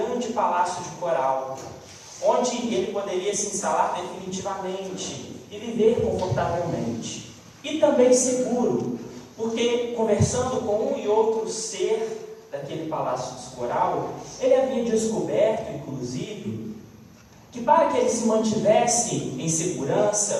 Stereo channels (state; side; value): identical; both; correlation 1.00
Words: palácio de coral, onde ele poderia se instalar definitivamente e viver confortavelmente. E também seguro, porque conversando com um e outro ser daquele palácio de coral, ele havia descoberto, inclusive, que para que ele se mantivesse em